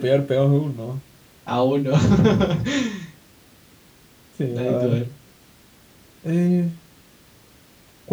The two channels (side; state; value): both; identical; correlation 1.00